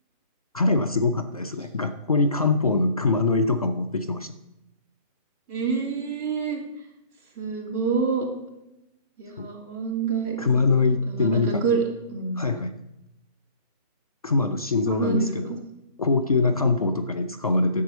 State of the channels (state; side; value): inverted; both; correlation -0.51